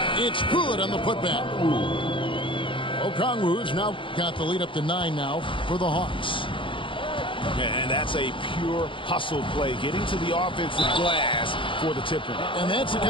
It's good on the putback. Okongwu's now got the lead up to 9 now for the Hawks. And that's a pure hustle play, getting to the offensive glass for the tip-in. And that's the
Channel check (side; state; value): right; late; 0.25 ms